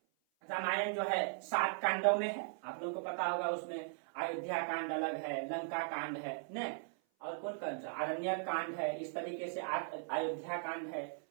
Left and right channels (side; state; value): left; silent; 52 dB below the other